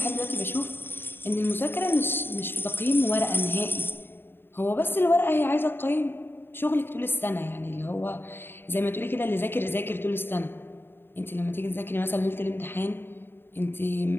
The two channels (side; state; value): right; late; 0.10 ms